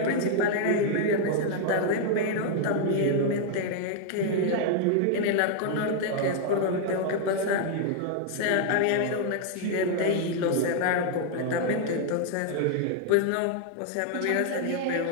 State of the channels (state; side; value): different; both; correlation 0.00